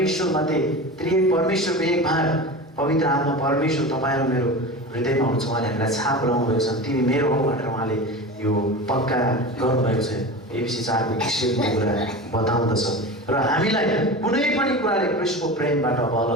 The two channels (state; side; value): normal; both; correlation 0.30